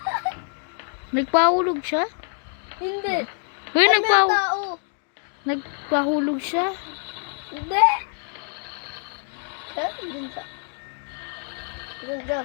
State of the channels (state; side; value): silent; right; 62 dB below the other